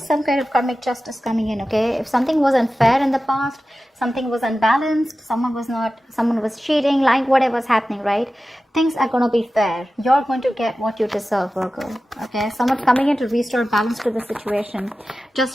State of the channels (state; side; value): normal; both; correlation 0.94